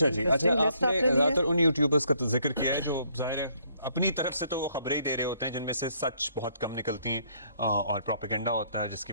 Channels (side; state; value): both; inverted; correlation -0.67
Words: जी, अच्छा आपने ज़्यादातर उन यूट्यूबर्स का तो जिक्र किया है जो ज़ाहिर है अपनी तरफ से तो वो खबरें ही दे रहे होते हैं जिनमें से सच बहुत कम निकलती हैं और प्रोपेगेंडा होता है जिसकी